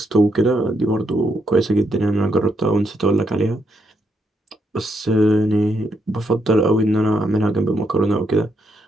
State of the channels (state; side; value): normal; both; correlation 0.78